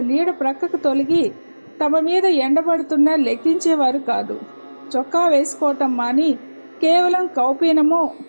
నీడ ప్రక్కకు తొలగి తమ మీద ఎండబడుతున్నా లెక్కించేవారు కాదు. చొక్కా వేసుకోవటం మాని కేవలం కౌపీనమో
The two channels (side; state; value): both; inverted; correlation -1.00